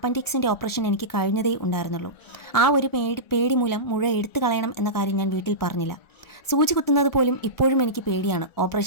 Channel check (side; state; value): right; late; 1.4 ms